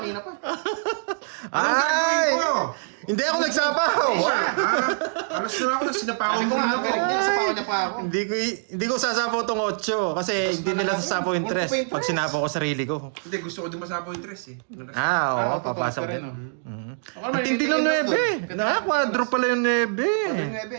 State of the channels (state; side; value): silent; left; digital silence